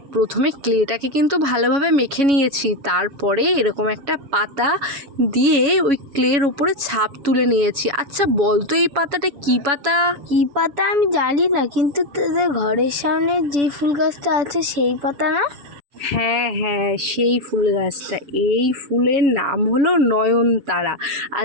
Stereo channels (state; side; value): late; left; 7.1 ms